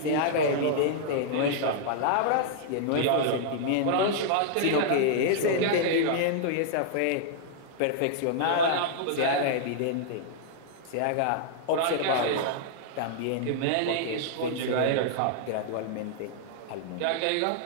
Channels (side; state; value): both; different; correlation -0.01